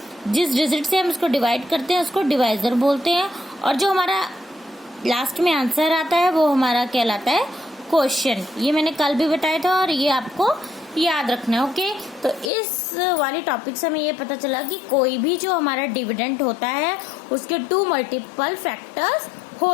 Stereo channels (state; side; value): drops out; right; at 12.5 s